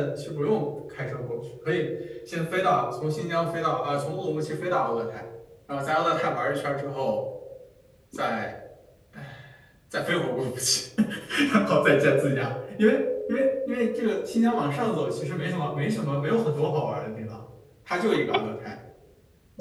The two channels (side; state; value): both; identical; correlation 1.00